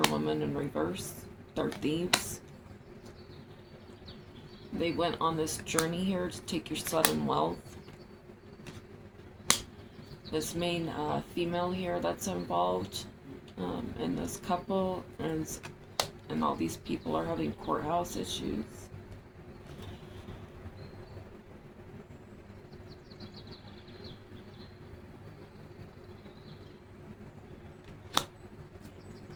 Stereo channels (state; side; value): identical; both; correlation 1.00